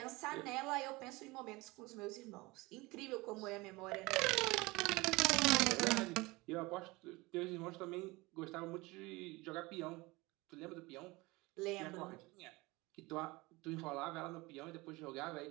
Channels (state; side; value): quieter; left; 22.7 dB